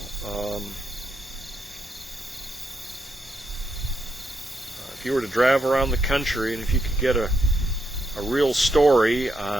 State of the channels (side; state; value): both; normal; correlation 0.80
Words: if you were to drive around the country and if you could get a real story